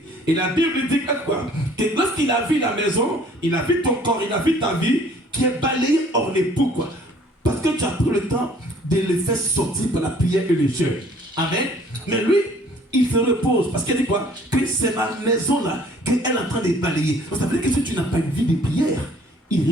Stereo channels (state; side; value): normal; both; correlation 0.56